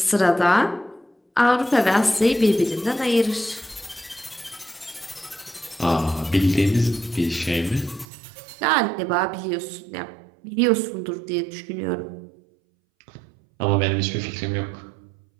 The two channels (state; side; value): drops out; left; at 8.1 s